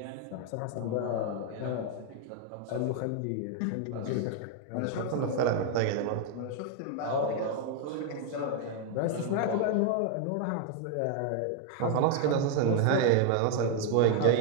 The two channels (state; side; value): different; both; correlation 0.00